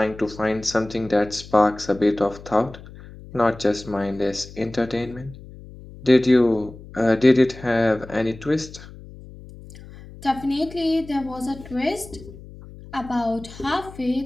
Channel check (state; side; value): noise; left; hum, 17 dB below the sound